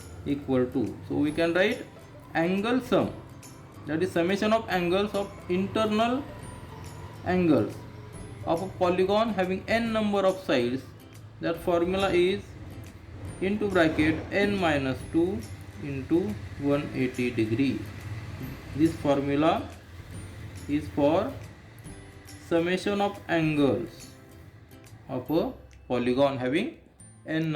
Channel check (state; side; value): identical; both; correlation 1.00